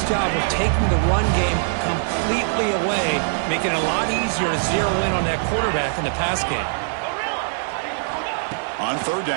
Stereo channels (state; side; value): silent; left; 64 dB below the other